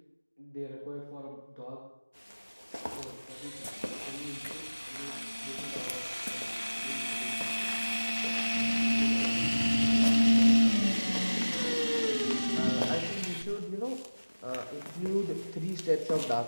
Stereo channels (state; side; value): inverted; both; correlation -1.00